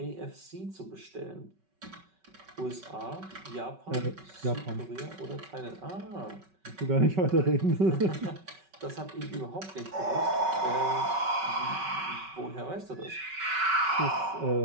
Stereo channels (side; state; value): left; late; 5.3 ms